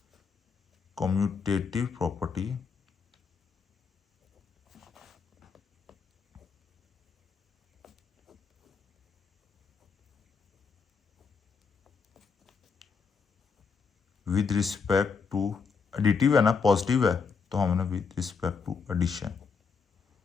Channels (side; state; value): right; quieter; 5.5 dB